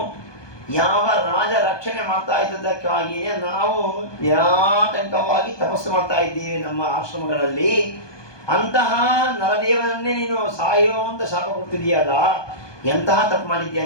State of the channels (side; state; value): right; late; 1.2 ms